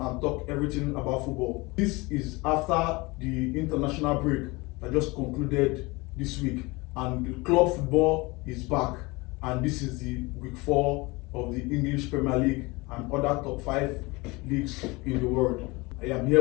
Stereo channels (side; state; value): right; quieter; 24.3 dB